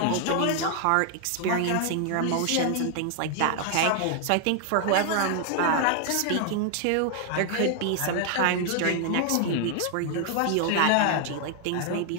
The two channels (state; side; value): different; both; correlation 0.00